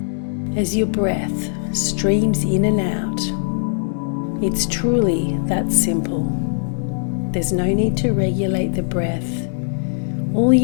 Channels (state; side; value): silent; right; digital silence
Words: as your breath streams in and out. It's truly that simple. There's no need to regulate the breath. All